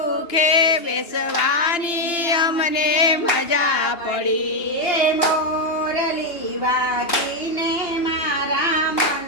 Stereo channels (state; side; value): late; right; 2.8 ms